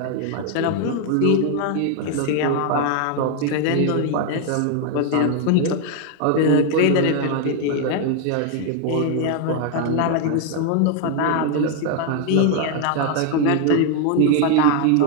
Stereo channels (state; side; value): different; both; correlation 0.01